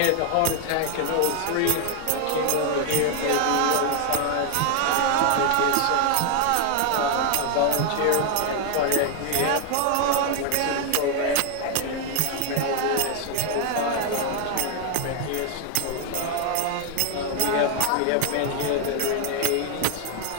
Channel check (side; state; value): both; different; correlation 0.00